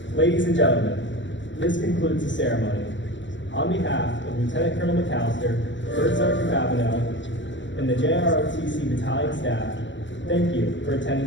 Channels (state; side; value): late; right; 0.54 ms